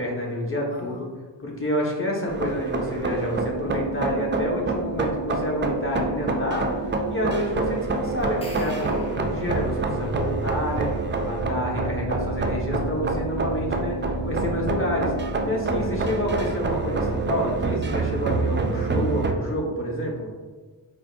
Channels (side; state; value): both; normal; correlation 0.16